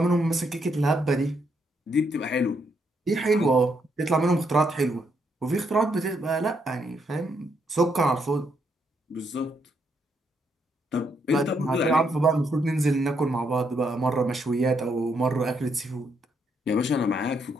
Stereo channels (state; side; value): normal; both; correlation 0.76